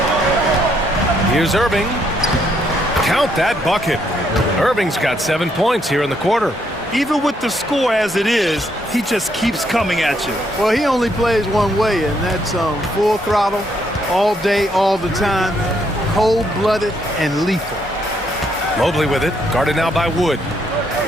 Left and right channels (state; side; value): normal; both; correlation 0.73